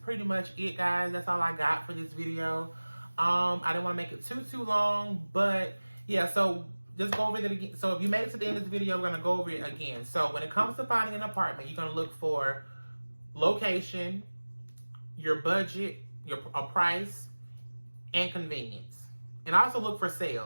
much it, guys. That's all I got for this video. I didn't want to make it too long, but yeah, so just go over it again. So if you made it to the end of this video, we're going to go over it again. So when it comes to finding an apartment, you're going to look for location, your budget, a price, and convenience. And also look for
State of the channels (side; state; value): both; inverted; correlation -1.00